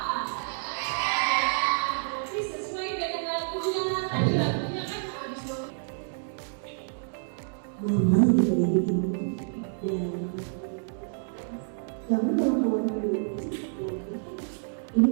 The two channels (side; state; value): left; silent; 59 dB below the other